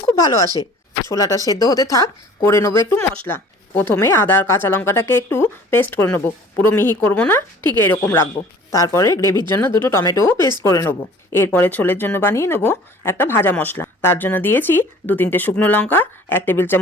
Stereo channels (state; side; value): normal; both; correlation 0.49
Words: খুব ভালো আসে। ছোলাটা সেদ্ধ হতে থাক, করে নেবো একটু মশলা। প্রথমে আদা আর কাঁচা লঙ্কাটাকে একটু পেস্ট করে নেবো, পুরো মিহি করব না, ঠিক এরকম রাখবো। তারপরে গ্রেভির জন্য দুটো টমেটোও পেস্ট করে নেবো। এরপরে ছোলের জন্য বানিয়ে নেবো একটা ভাজা মশলা। তার জন্য দিয়েছি 2-3টে শুকনো লঙ্কা, 1 টেবিল